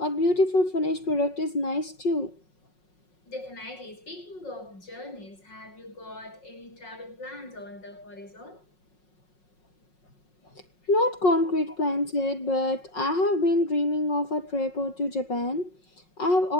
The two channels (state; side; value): late; right; 5.5 ms